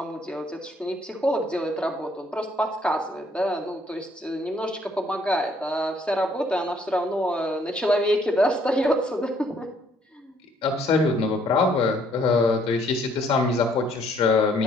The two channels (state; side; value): normal; both; correlation 0.65